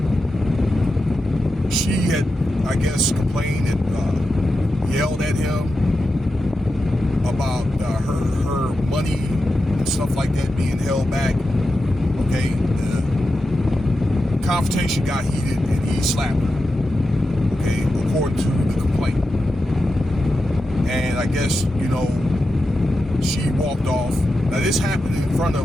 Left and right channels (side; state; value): both; normal; correlation 0.90